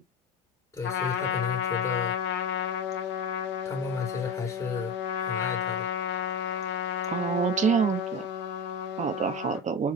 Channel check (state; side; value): normal; both; correlation 0.24